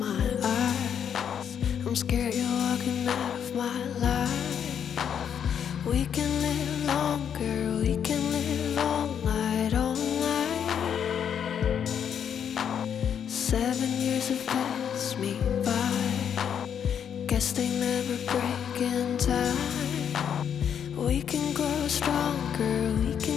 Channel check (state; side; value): quieter; right; 8.3 dB